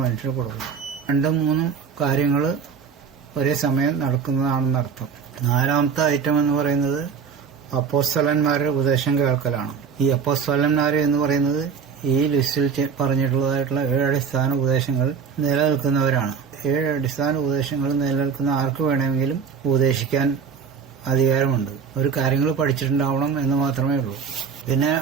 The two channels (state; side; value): quieter; left; 6.5 dB